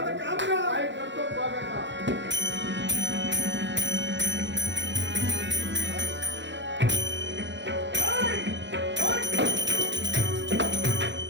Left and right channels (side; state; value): left; late; 0.53 ms